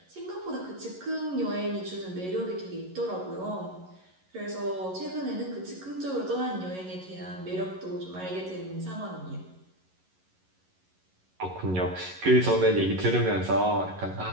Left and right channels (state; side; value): late; left; 11 ms